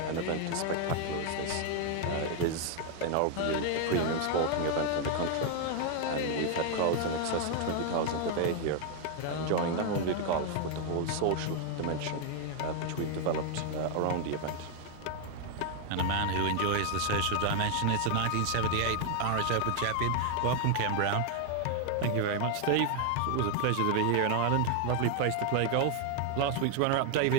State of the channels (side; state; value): both; different; correlation 0.00